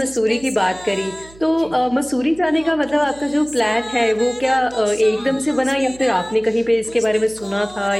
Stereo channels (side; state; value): right; noise; hum, 22 dB below the sound